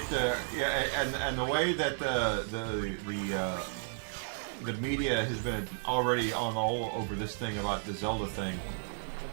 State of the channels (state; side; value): silent; left; digital silence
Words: and the way that the media has been already on all over this thing about the Zelda thing.